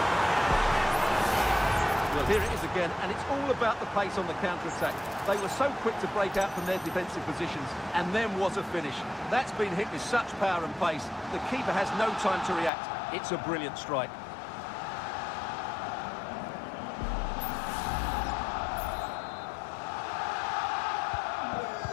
Well, here it is again, and it's all about the pace on the counter-attack. They were so quick to break out from their defensive positions, and then was a finish. That's been hit with such power and pace. The keeper has no time to react. It's a brilliant strike.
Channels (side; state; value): right; drops out; at 12.7 s